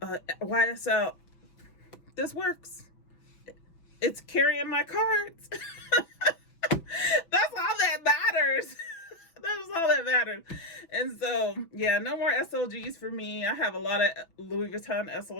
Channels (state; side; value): late; right; 6.1 ms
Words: a YSL? This works. It's carrying my cards. That's all that matters. That's all that matters. And so, yeah, no more SLGs for me. I have a lot of Louis Vuitton